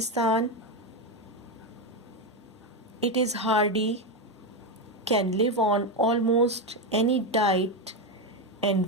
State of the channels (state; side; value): normal; both; correlation 0.10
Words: It is hardy, can live on almost any diet